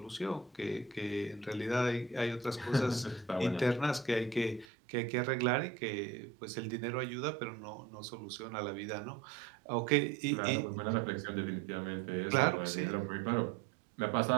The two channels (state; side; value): drops out; left; at 4.7 s